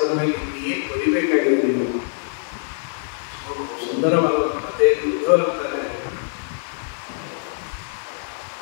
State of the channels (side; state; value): right; silent; digital silence